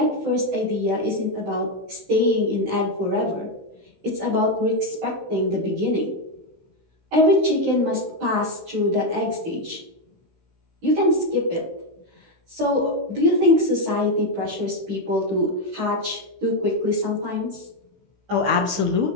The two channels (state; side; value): late; left; 16 ms